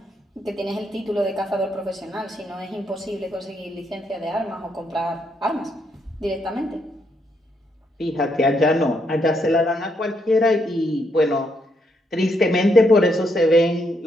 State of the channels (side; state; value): both; normal; correlation 0.76